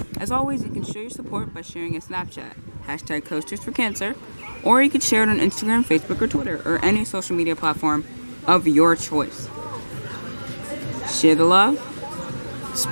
As always, you can show your support by sharing a Snapchat. hashtag Coasters for Cancer, or you could share it on Instagram, Facebook, or Twitter, or any social media platform of your choice. Share the love,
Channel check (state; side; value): inverted; both; correlation -1.00